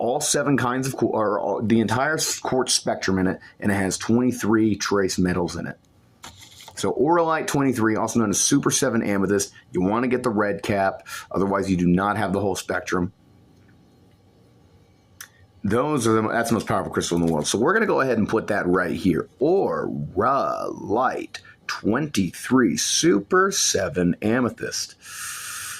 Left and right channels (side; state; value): both; identical; correlation 1.00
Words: 7 kinds of the entire quartz spectrum in it, and it has 23 trace metals in it. So Auralite 23, also known as Super 7 Amethyst, you want to get the red cap, otherwise you do not have the whole spectrum. That's the most powerful crystal in the world. So we're going to go ahead and put that right here. Auralite 23 Super 7 Amethyst.